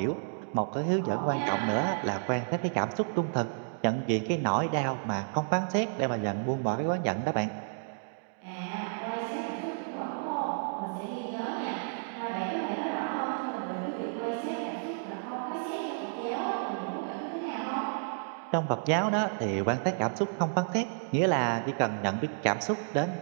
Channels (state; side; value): silent; left; digital silence